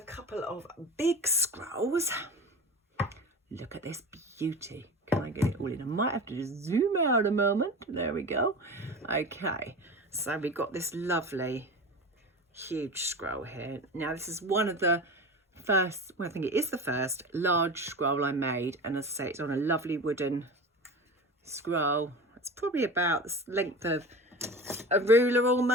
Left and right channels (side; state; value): both; normal; correlation 0.31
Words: couple of big scrolls. Look at this beauty. Can I get it all in? I might have to just zoom out a moment. There we go. Okay, so we've got this lovely huge scroll here. Now this is one of the first, well, I think it is the first large scroll I made, and as I say, it's on a lovely wooden scroll. It's probably about the length of a ruler